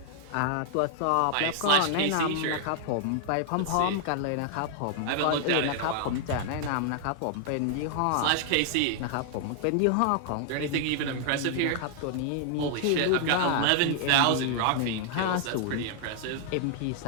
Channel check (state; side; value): different; both; correlation 0.00